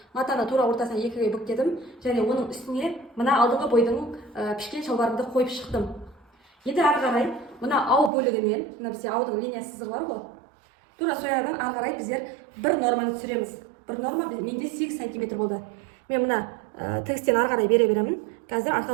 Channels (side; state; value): left; drops out; at 8.1 s